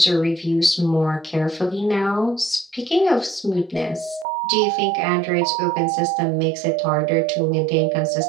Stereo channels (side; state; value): left; drops out; at 4.2 s